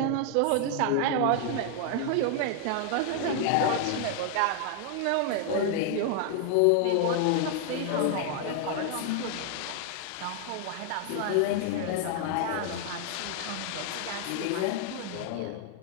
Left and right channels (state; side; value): different; both; correlation 0.00